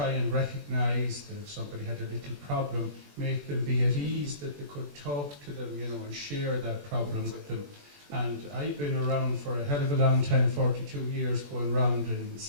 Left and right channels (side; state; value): left; late; 21 ms